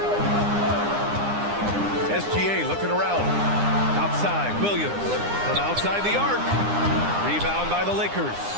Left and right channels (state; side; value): late; left; 9.8 ms